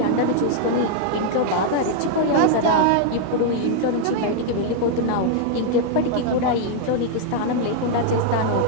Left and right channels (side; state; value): both; different; correlation -0.01